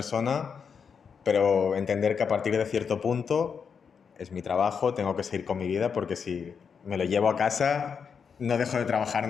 pero entender que a partir de cierto punto es mi trabajo, tengo que seguir con mi vida, porque si me lo llevo a casa no dejo de trabajar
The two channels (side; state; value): right; quieter; 6.4 dB